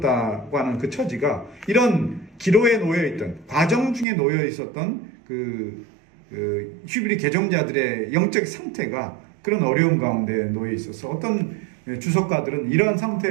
하는 그 처지가 이런 기로에 놓여있던, 과정 중에 놓여 있었던 히브리 개종자들의 영적 상태가 그런 어려움 가운데 놓여 있어서 어떤 주석가들은 이러한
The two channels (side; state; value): left; drops out; at 4.0 s